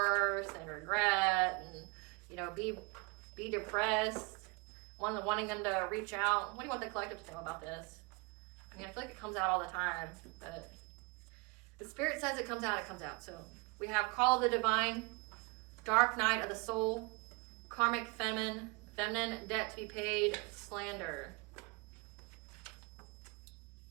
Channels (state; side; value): quieter; left; 28.2 dB